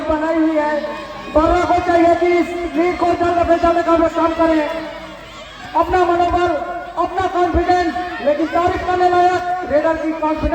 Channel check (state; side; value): identical; both; correlation 1.00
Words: बनाई हुई है। बर्रा को चाहिए कि इस लीड को जल्द से जल्द काम करें। अपना मनोबल, अपना कॉन्फिडेंस, लेकिन तारीफ करने लायक रेडर की